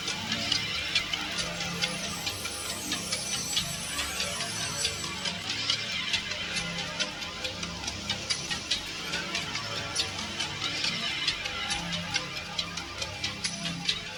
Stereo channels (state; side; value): identical; both; correlation 1.00